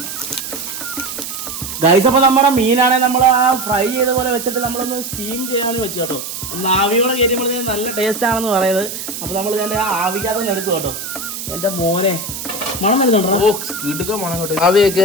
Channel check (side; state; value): right; noise; hiss, 7 dB below the sound